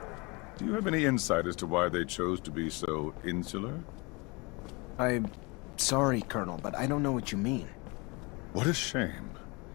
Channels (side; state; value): right; quieter; 27.6 dB